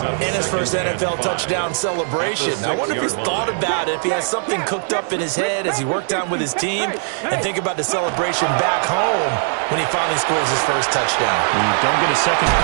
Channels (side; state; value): left; silent; 61 dB below the other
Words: And his first NFL touchdown celebration. I wonder if he's thought about it, if he has something cooked up in his head as he worked on with his team, and think about the celebration back home when he finally scores his first touchdown. You don't get a second.